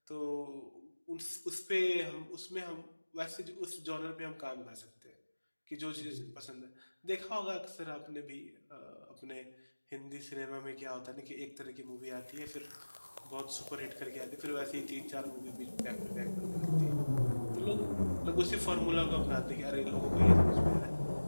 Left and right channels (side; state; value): both; inverted; correlation -1.00